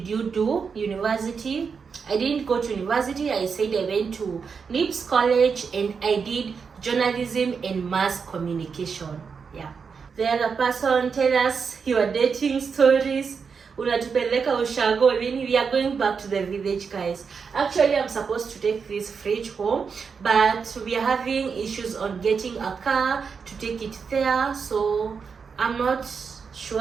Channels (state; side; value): quieter; left; 5.8 dB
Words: you do university? I didn't go to university. I said I went to NIPS College and I did journalism and mass communication. Yeah. The other person, tell us your dating stories. Unatupeleka ushago. We are going back to the village, guys. Actually, I'm supposed to take this fridge home, but we are having issues on getting a car to take it there, so I'm not